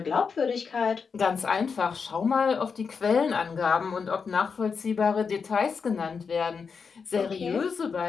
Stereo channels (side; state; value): right; quieter; 5.6 dB